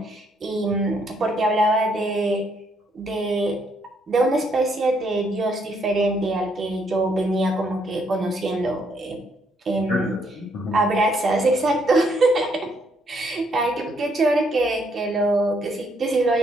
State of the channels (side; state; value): both; normal; correlation 0.72